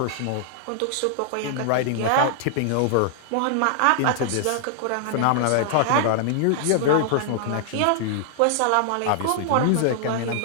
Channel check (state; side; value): different; both; correlation -0.01